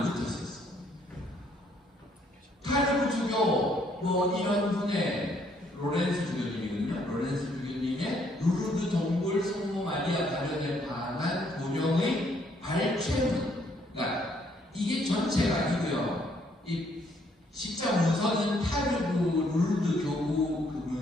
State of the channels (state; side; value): normal; both; correlation 0.68